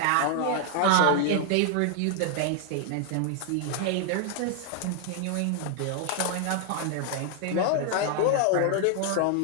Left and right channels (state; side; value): different; both; correlation 0.00